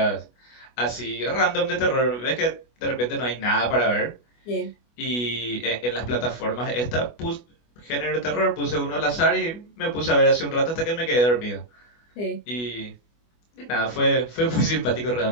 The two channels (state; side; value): late; right; 24 ms